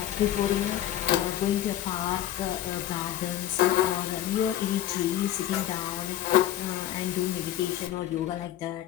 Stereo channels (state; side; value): quieter; right; 12.5 dB